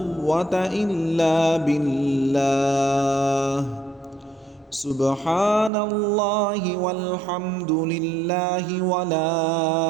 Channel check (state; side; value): drops out; left; at 5.7 s